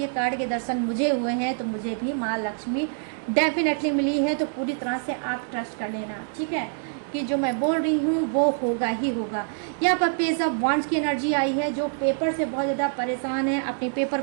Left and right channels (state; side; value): silent; left; digital silence